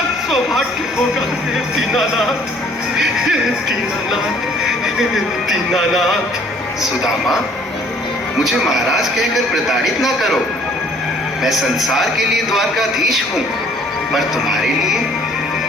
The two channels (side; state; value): both; normal; correlation 0.57